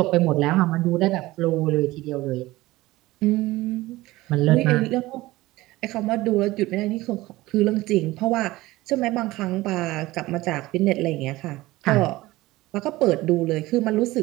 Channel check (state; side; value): quieter; left; 18.5 dB